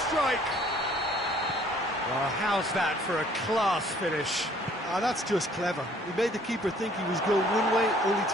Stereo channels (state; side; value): normal; both; correlation 0.58